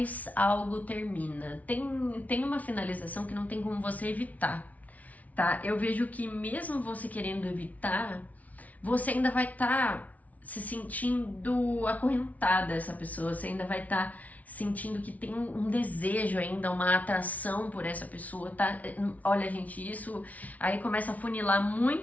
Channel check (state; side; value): late; right; 0.071 ms